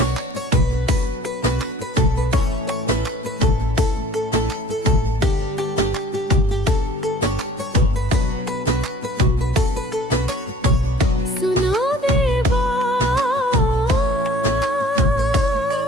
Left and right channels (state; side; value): normal; both; correlation 0.50